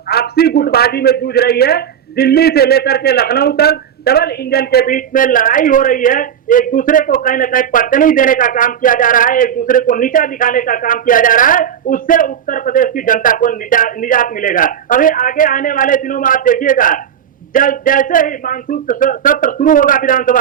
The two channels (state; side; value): quieter; left; 8.8 dB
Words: आपसी गुटबाजी में जूझ रही है। दिल्ली से लेकर के लखनऊ तक डबल इंजन के बीच में लड़ाई हो रही है। एक दूसरे को कहीं न कहीं पटनी देने का काम किया जा रहा है, एक दूसरे को नीचा दिखाने का काम किया जा रहा है। उससे उत्तर प्रदेश की जनता को निजात मिलेगा। अभी आगे आने वाले दिनों में आप देखिएगा, जैसे ही मानसून सत्र शुरू होगा विधानसभा